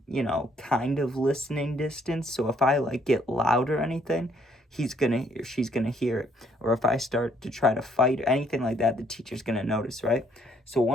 kind of listening distance. So if I like get loud or anything, she's gonna hear it. Or if I start to try to fight or anything like that, the teacher's gonna notice, right? So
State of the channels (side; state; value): both; normal; correlation 0.67